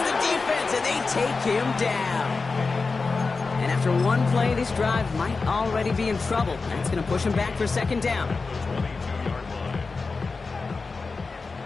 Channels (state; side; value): quieter; right; 4.2 dB